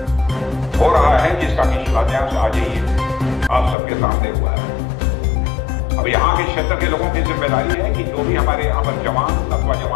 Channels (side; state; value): right; drops out; at 3.8 s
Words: हो रहा है, जिसका कि शिलान्यास आज ही आप सबके सामने हुआ है। अब यहाँ के क्षेत्र के लोगों की जिम्मेदारी है कि जो भी हमारे यहाँ पर जवान अथवा